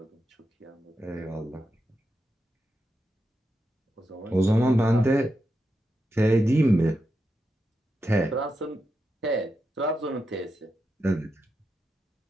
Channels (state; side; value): normal; both; correlation 0.86